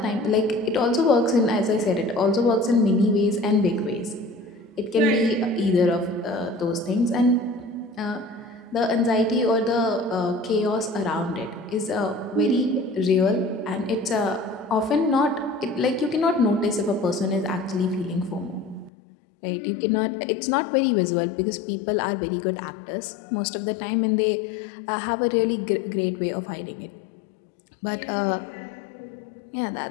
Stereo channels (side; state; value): right; drops out; at 18.9 s